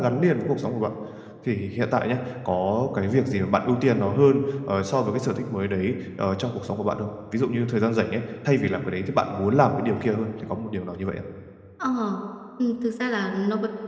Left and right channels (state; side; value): identical; both; correlation 1.00